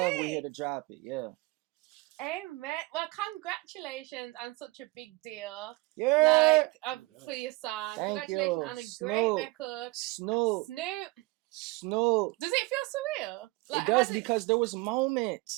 here to drop it. Yeah. Amen. Well, congratulations on such a big deal. Yeah. For your song. Thank Congratulations you. on a Snoop. great record. Snoop. Does it feel surreal? It does because there was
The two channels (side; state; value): left; quieter; 22.3 dB